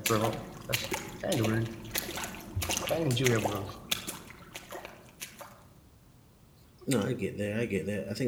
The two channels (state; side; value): identical; both; correlation 1.00